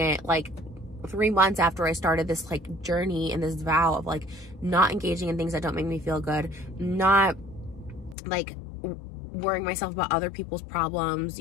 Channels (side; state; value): right; drops out; at 8.2 s